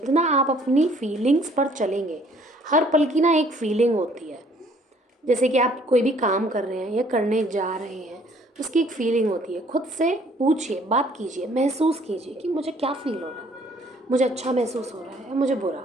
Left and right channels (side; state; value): both; normal; correlation 0.59